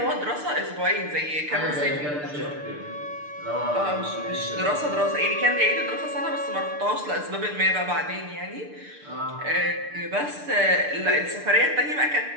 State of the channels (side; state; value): left; late; 6.7 ms